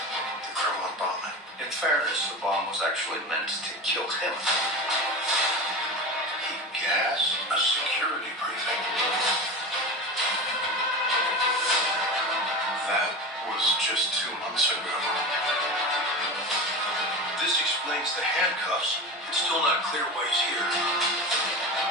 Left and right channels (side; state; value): both; normal; correlation 0.27